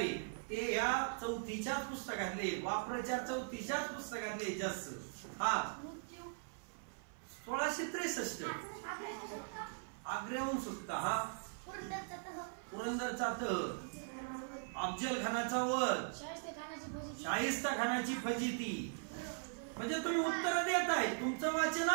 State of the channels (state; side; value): silent; left; 51 dB below the other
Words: ते या 4थीच्या पुस्तकातले, वापराच्या 4थीच्या पुस्तकातले जास्त. 1663 आग्र्याहून सुटका. पुरंदरचा तह. अफजल खानाचा वध. शाहिस्ता खानाची फजिती. म्हणजे तुम्ही उत्तर देताय, तुमचं वाचन